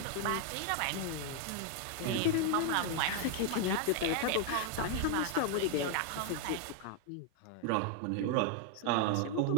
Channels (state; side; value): different; both; correlation 0.01